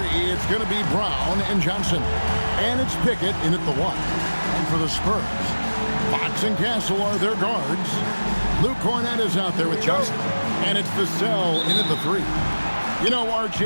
it's going to be Brown and Johnson. And it's Pickett in at the 1. And for the Spurs, Fox and Castle are their guards. Luke Cornett is out there with Johnson. And it's Vassell in at the 3. You know,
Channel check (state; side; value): inverted; both; correlation -1.00